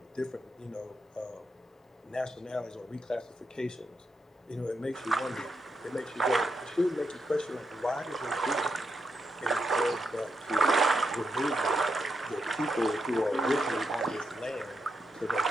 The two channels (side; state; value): both; normal; correlation 0.83